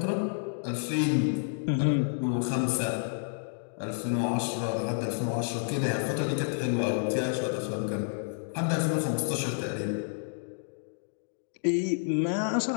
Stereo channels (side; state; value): right; silent; digital silence